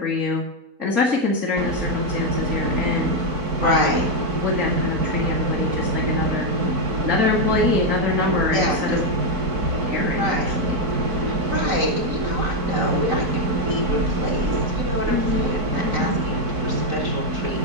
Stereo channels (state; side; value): late; left; 4.6 ms